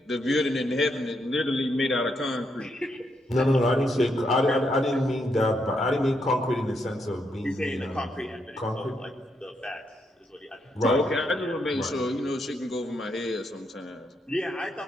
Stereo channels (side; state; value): both; normal; correlation 0.78